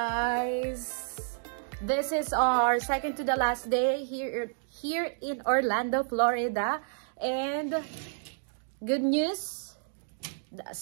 This is our second to the last day here in Orlando, Florida. And good news, the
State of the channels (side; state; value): left; silent; digital silence